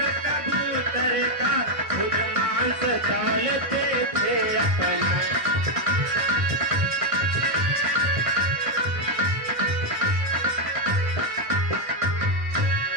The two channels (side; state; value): left; late; 1.5 ms